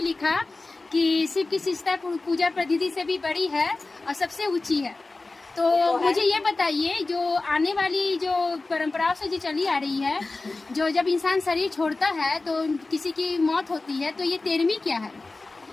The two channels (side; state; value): right; quieter; 3.4 dB